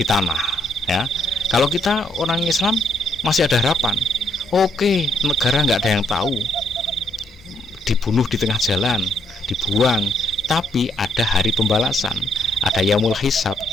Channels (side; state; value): both; normal; correlation 0.73